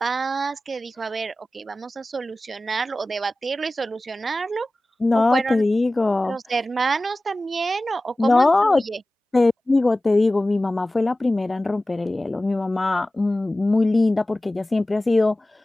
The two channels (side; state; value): both; normal; correlation 0.96